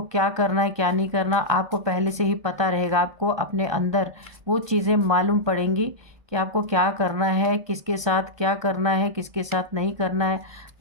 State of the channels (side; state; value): left; late; 1.2 ms